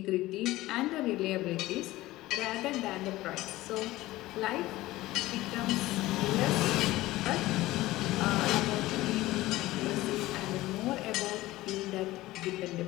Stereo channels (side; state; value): right; quieter; 17.6 dB